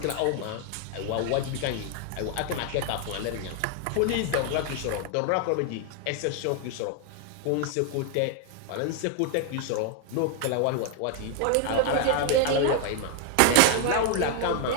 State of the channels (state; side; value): different; both; correlation 0.00